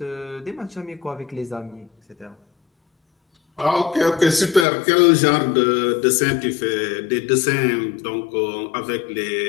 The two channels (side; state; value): right; drops out; at 4.7 s